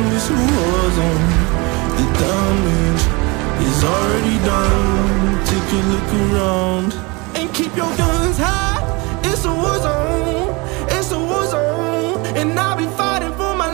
it's a war zone. The damage is already done. Take a look around and keep your guns high. It's a war zone. It's a war zone, and I'll be fighting for my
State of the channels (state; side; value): quieter; left; 26.6 dB